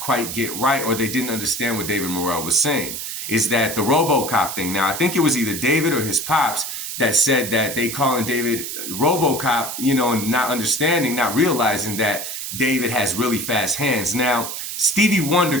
quite get right, or they didn't understand what David Morrell was saying, is that the RoboCop thing. Now, I think it was either David or his pops that said that they calling David RoboCop, you know, and not understanding, not realizing that David has really fast hands. Now, Stevie Wonder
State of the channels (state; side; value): noise; right; hiss, 6 dB below the sound